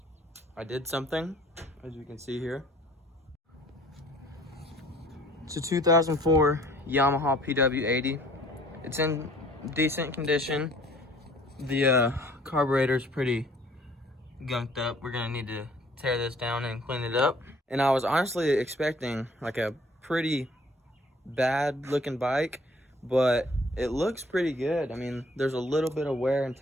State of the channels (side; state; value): both; normal; correlation 0.56